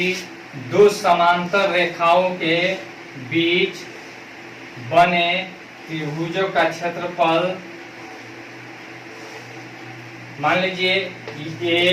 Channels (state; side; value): identical; both; correlation 1.00